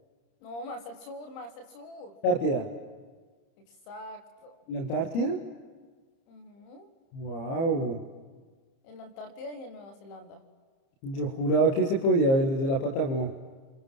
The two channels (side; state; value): right; late; 30 ms